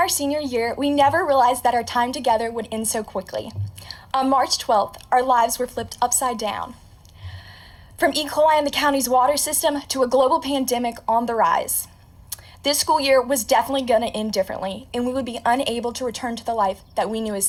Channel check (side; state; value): both; identical; correlation 1.00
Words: senior year, we never realized that our time together would end so quickly. On March 12th, our lives were flipped upside down. From E. coli in the county's water system to a global pandemic on the rise. This school year was definitely going to end differently, and we would be unable to return to the life that we knew as